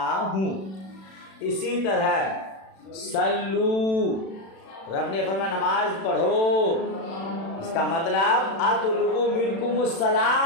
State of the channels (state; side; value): late; right; 36 ms